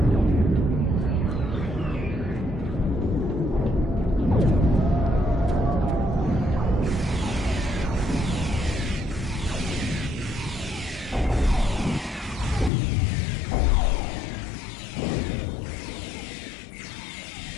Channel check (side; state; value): right; drops out; at 12.7 s